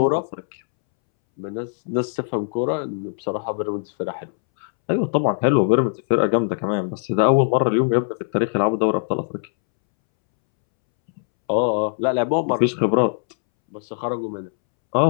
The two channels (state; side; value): silent; right; 65 dB below the other